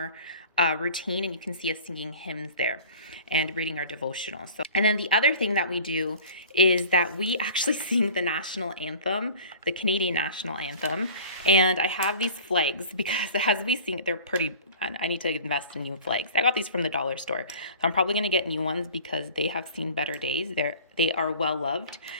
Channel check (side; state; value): both; inverted; correlation -0.43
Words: routine, and you can see us singing hymns there and reading our devotional. And then the other thing that we do is that we actually sing the national anthem, the Canadian national anthem. And I have these flags because as we sing it, they're pretty, I need to invest in new flags. I got these from the dollar store. So I'm probably going to get new ones because they have seen better days. They are well loved.